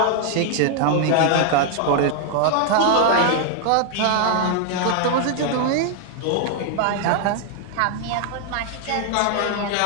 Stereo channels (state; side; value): different; both; correlation 0.00